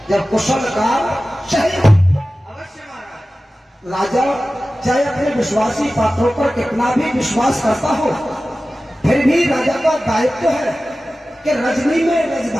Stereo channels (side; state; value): both; normal; correlation 0.96